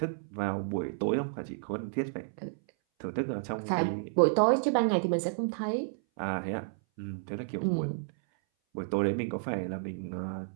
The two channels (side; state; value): left; silent; 57 dB below the other